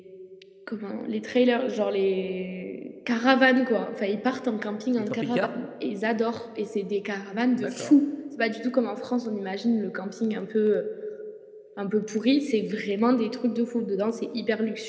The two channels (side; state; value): both; identical; correlation 1.00